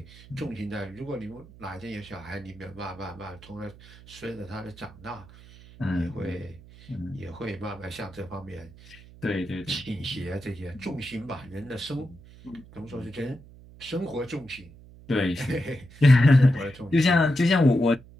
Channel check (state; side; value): noise; right; hum, 20 dB below the sound